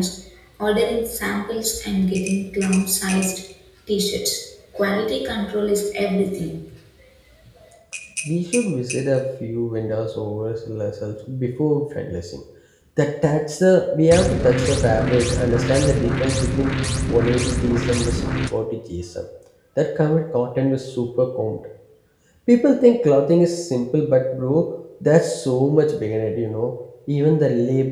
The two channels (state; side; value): identical; both; correlation 1.00